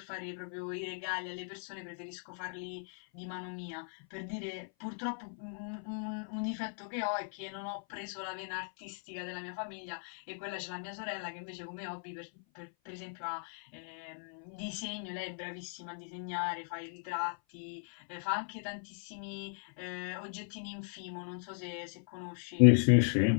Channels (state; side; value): silent; right; 53 dB below the other